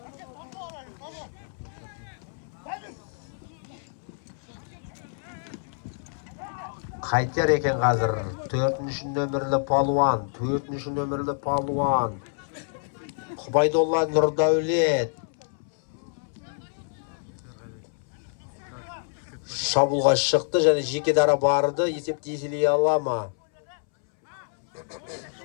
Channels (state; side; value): silent; right; 60 dB below the other